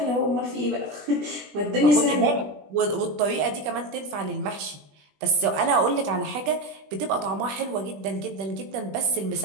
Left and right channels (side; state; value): left; late; 20 ms